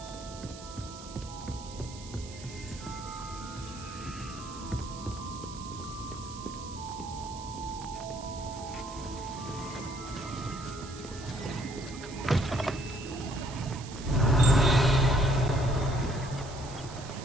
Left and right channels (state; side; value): noise; right; hiss, 15 dB below the sound